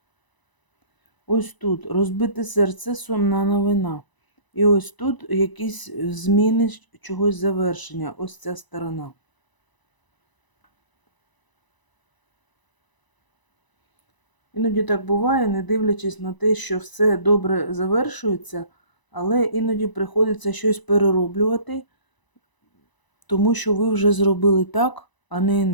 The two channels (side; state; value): right; late; 1.0 ms